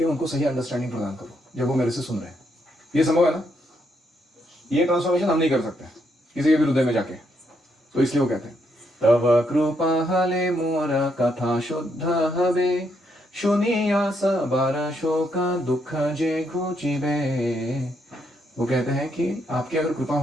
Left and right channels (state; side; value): normal; both; correlation 0.76